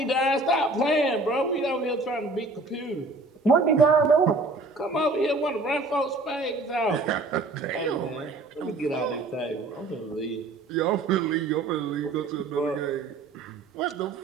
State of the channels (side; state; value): left; quieter; 3.2 dB